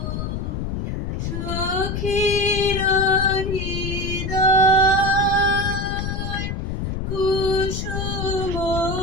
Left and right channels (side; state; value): left; noise; rumble, 3 dB below the sound